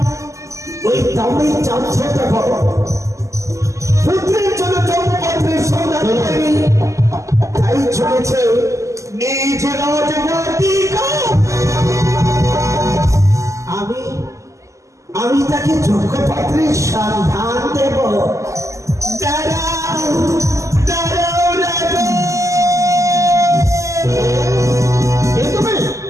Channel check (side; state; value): left; late; 0.15 ms